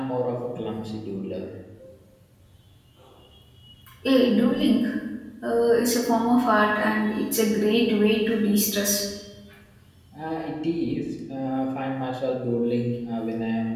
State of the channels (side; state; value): both; identical; correlation 1.00